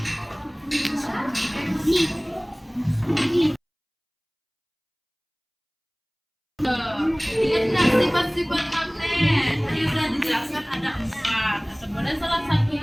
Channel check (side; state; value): both; identical; correlation 1.00